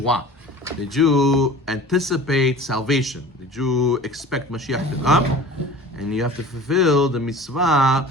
Did you anticipate salvation? Did you expect Mashiach to come? And you have to fulfill the mitzvah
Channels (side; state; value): both; normal; correlation 0.41